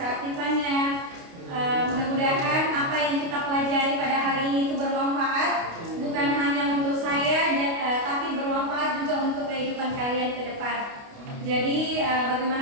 keaktifannya. Mudah-mudahan apa yang kita pelajari pada hari ini itu bermanfaat, bukan hanya untuk saya, tapi bermanfaat juga untuk kehidupan kalian ke depan. Jadi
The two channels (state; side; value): late; left; 29 ms